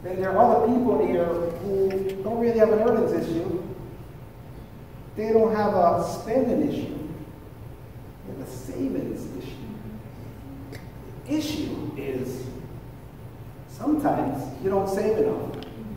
then there are other people here who don't really have an earnings issue. They don't have a spending issue. They have a savings issue. The issue is sometimes you don't save enough.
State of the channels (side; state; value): both; identical; correlation 1.00